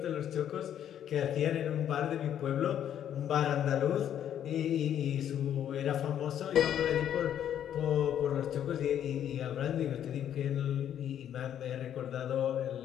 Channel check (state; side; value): quieter; right; 10.0 dB